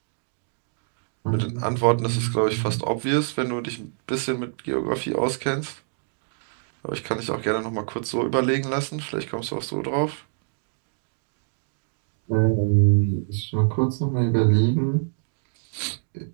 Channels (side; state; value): left; silent; digital silence